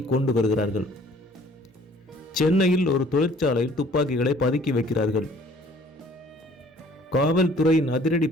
கொண்டு வருகிறார்கள். சென்னையில் ஒரு தொழிற்சாலையில் துப்பாக்கிகளை பதுக்கி வைக்கிறார்கள். காவல்துறையின் அதிரடி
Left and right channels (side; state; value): both; normal; correlation 0.55